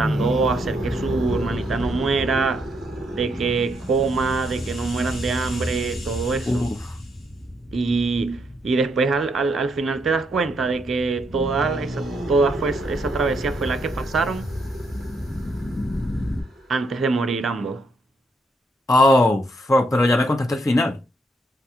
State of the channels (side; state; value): both; normal; correlation 0.76